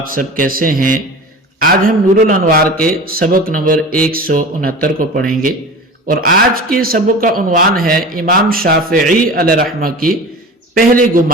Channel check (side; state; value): both; normal; correlation 0.35